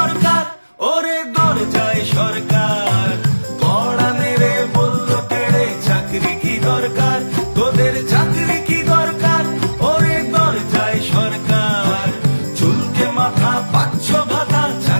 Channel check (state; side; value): inverted; both; correlation -1.00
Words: ওরে দরজায় সরকার, কড়া মেরে বলল তেড়ে চাকরি কি দরকার। তোদের চাকরি কি দরকার ওরে দরজায় সরকার, চুলকে মাথা পাচ্ছ ভাতা